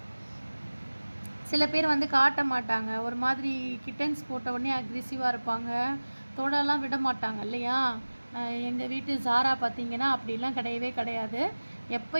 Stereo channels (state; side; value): inverted; both; correlation -1.00